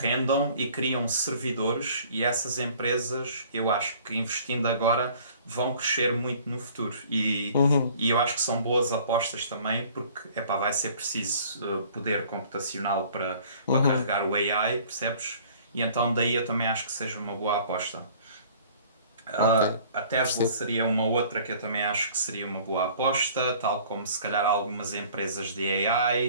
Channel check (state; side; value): inverted; both; correlation -0.52